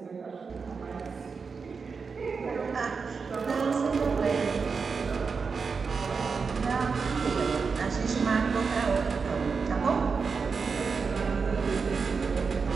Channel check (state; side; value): quieter; left; 5.2 dB